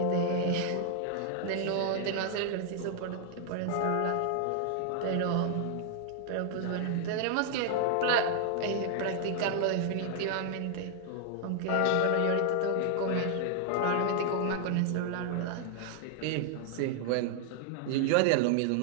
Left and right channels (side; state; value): both; different; correlation 0.00